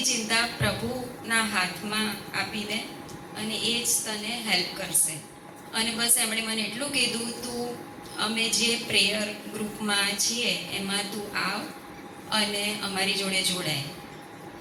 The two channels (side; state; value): both; identical; correlation 1.00